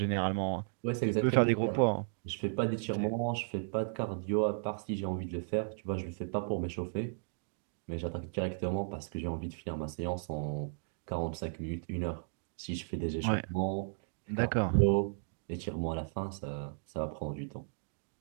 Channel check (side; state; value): left; silent; digital silence